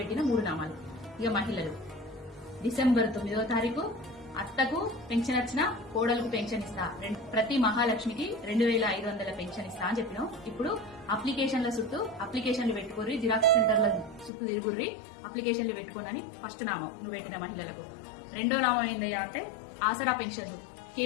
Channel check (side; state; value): right; drops out; at 14.3 s